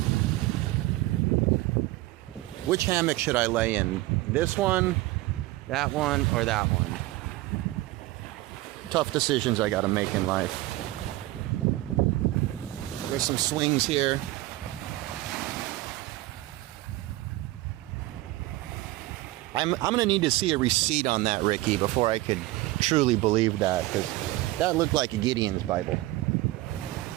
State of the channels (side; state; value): left; quieter; 18.4 dB